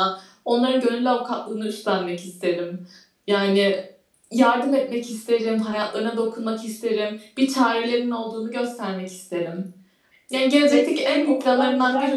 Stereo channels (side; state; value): both; identical; correlation 1.00